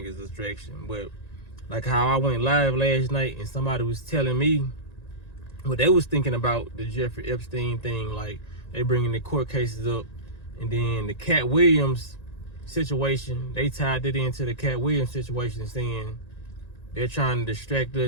is a distraction. But like how I went live last night and somebody was telling me what they was thinking about the Jeffrey Epstein thing, like they bringing the court cases up, and then the Cat Williams situation, they tied it into the Cat Williams situation, saying they're trying to distract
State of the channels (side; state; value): right; late; 1.9 ms